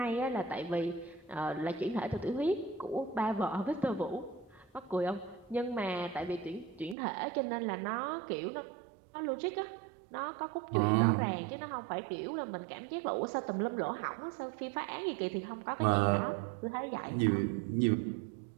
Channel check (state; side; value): drops out; left; at 7.0 s